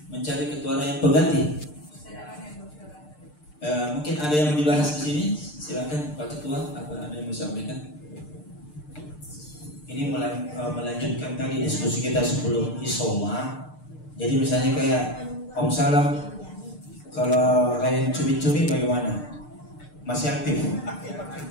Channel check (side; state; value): right; late; 6.7 ms